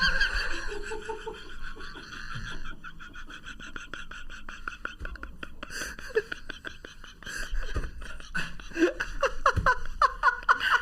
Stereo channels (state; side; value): identical; both; correlation 1.00